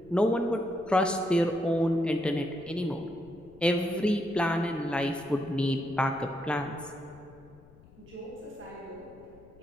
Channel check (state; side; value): noise; left; rumble, 24 dB below the sound